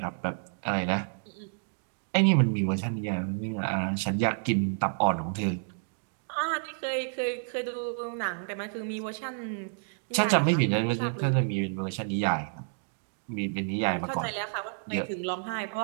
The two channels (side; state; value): left; silent; digital silence